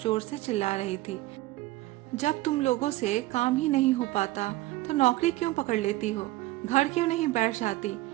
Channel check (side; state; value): left; quieter; 18.1 dB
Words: से चिल्ला रही थी। जब तुम लोगों से काम ही नहीं हो पाता तो नौकरी क्यों पकड़ लेती हो? घर क्यों नहीं बैठ जाती?